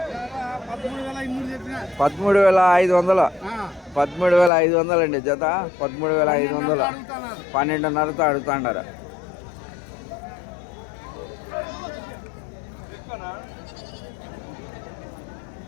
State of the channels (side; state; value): right; drops out; at 4.5 s